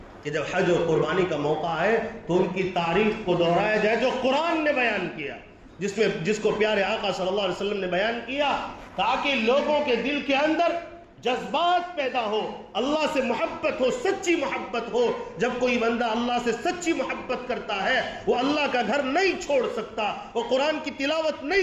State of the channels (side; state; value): both; identical; correlation 1.00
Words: کہ جب حج اور قربانی کا موقع ہے تو ان کی تاریخ کو دہرایا جائے جو قرآن نے بیان کیا، جس کو پیارے آقا صلی اللہ علیہ وسلم نے بیان کیا، تاکہ لوگوں کے دل کے اندر جذبات پیدا ہو، اللہ سے محبت ہو، سچی محبت ہو۔ جب کوئی بندہ اللہ سے سچی محبت کرتا ہے وہ اللہ کا گھر نہیں چھوڑ سکتا، وہ قرآن کی تلاوت